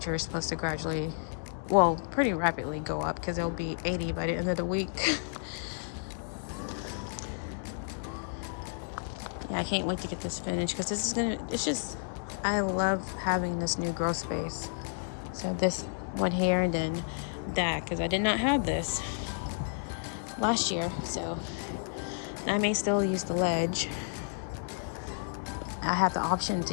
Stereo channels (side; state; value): right; silent; digital silence